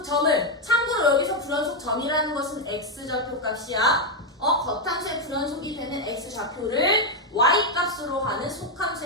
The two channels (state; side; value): normal; both; correlation 0.03